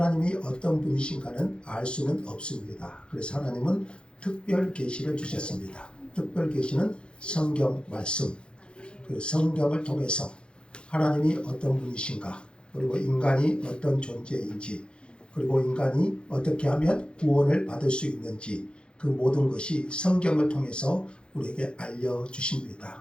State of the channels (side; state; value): right; late; 0.054 ms